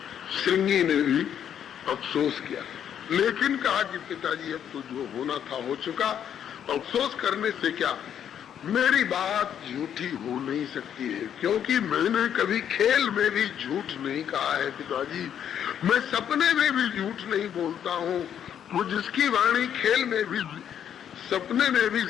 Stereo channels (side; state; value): right; quieter; 9.2 dB